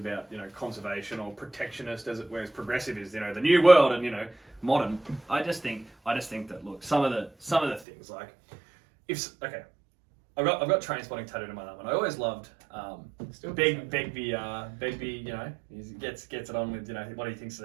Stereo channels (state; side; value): drops out; left; at 7.9 s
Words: you know, conservation or protectionist, whereas progressive is, you know, the new world and, you know, modern. I just think that, look, some of the things like I've got train spotting tattooed on my arm, and I always loved Begbie, you know, he gets it on with, you know, what he thinks